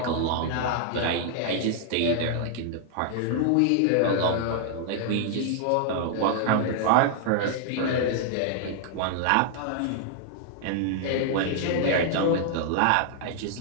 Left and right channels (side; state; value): both; different; correlation 0.00